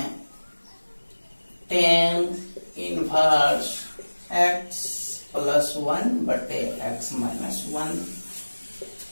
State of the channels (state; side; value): inverted; both; correlation -1.00